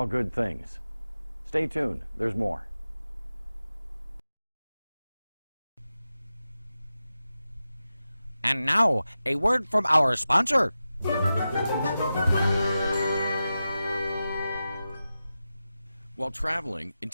good things. Stay tuned, there's more. And now, a word from our sponsor. While traveling and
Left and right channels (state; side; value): inverted; both; correlation -0.93